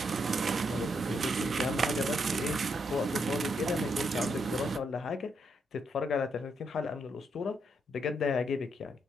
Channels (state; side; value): normal; both; correlation 0.78